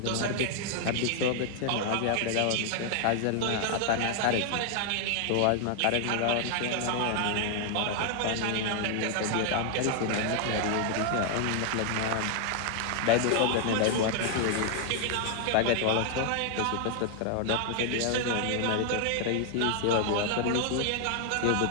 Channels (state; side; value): different; both; correlation 0.00